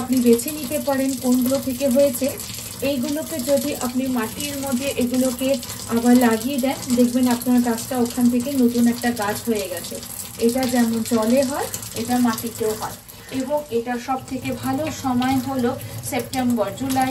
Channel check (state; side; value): identical; both; correlation 1.00